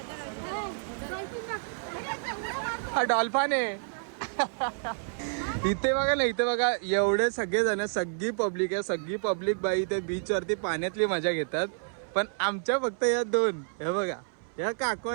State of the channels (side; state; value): left; silent; 58 dB below the other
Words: हा डॉल्फिन आहे. इथे बघा ना इथे बघा एवढे सगळे जण सगळी पब्लिक आहे. सगळी पब्लिक बाई इथे बीच वरती पाण्यातली मजा घेतात. पण आमच्या फक्त या 2 हे बघा या काकू